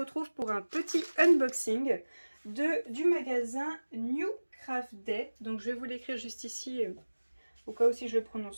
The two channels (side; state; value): both; inverted; correlation -1.00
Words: pour un petit unboxing du magasin New Craft Day. Donc je vais vous l'écrire juste ici au cas où si je le